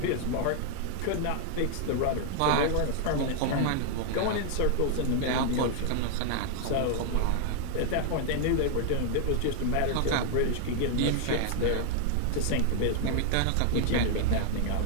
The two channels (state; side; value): different; both; correlation 0.00